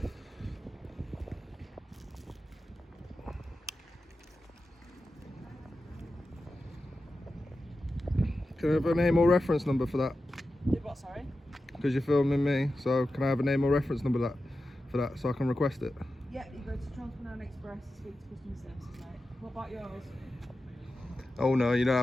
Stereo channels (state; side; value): normal; both; correlation 0.92